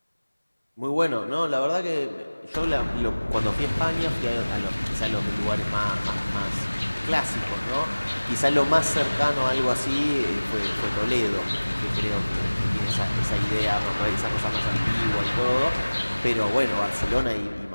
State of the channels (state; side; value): inverted; both; correlation -1.00